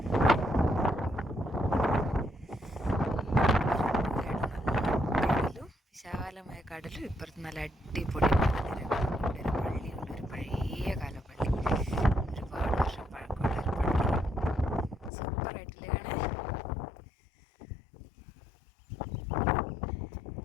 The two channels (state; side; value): drops out; right; at 15.1 s